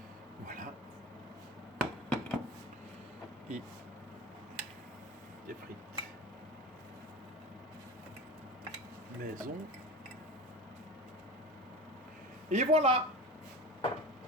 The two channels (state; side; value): normal; both; correlation 0.30